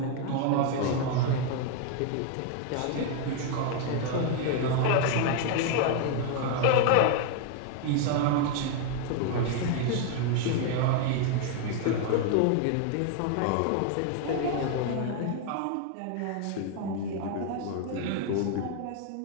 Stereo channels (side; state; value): both; different; correlation 0.01